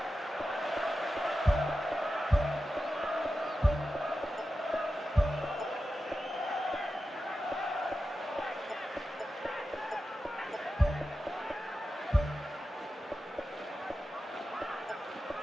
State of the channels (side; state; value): both; normal; correlation 0.92